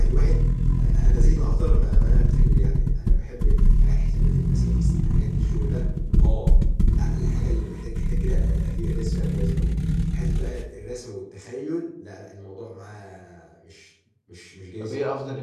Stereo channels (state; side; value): identical; both; correlation 1.00